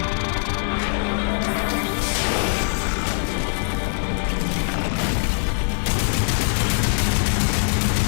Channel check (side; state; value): right; silent; 61 dB below the other